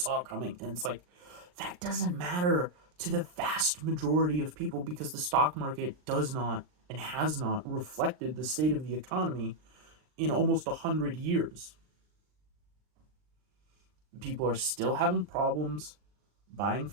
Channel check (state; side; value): late; left; 39 ms